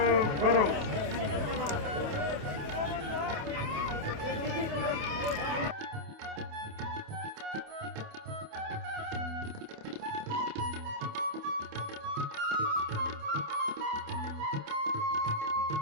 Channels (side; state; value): left; late; 28 ms